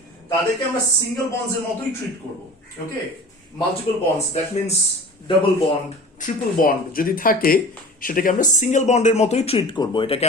তাদেরকে আমরা সিঙ্গেল বন্ডস এর মতোই ট্রিট করব। Okay, multiple bonds that means double bond, triple bond যদি থাকে সেটাকে আমরা সিঙ্গেল বন্ডের মতোই ট্রিট করব। এটাকে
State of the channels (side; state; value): both; normal; correlation 0.38